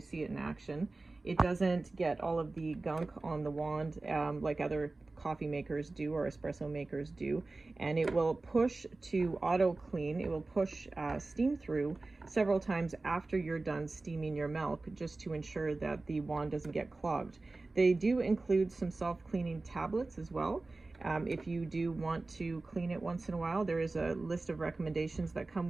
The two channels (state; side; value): quieter; left; 3.3 dB